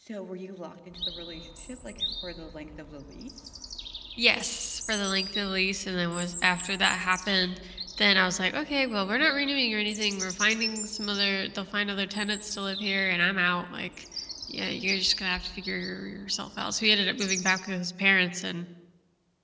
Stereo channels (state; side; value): identical; both; correlation 1.00